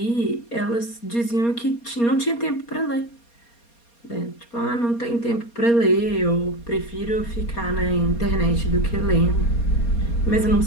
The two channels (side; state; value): right; late; 4.3 ms